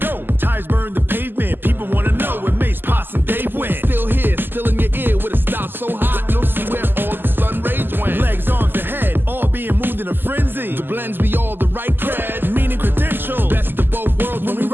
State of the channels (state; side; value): late; left; 0.095 ms